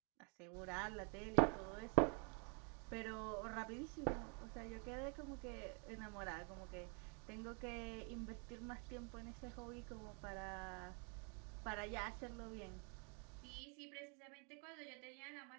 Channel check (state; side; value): quieter; left; 36.8 dB